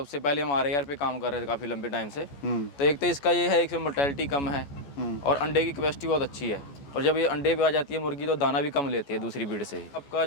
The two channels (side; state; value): right; late; 14 ms